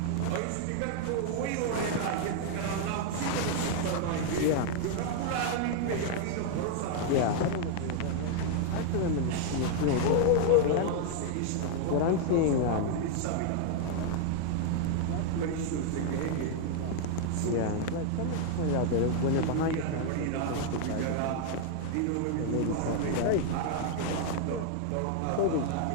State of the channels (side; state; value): both; different; correlation 0.00